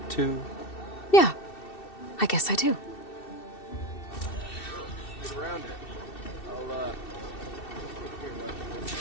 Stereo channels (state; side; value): late; right; 2.7 ms